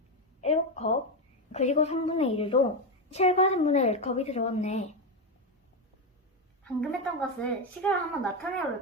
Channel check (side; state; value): both; normal; correlation 0.10